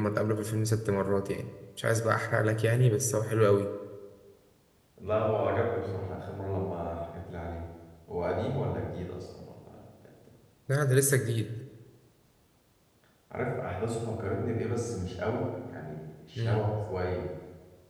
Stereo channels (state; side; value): identical; both; correlation 1.00